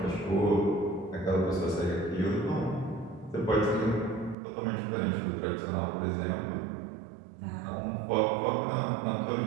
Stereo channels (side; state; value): left; drops out; at 4.4 s